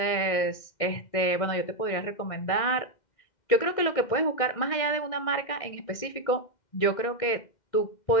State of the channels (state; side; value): late; right; 2.1 ms